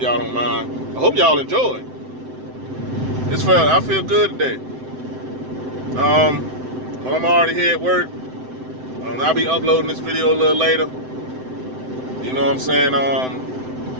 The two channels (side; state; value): left; late; 7.8 ms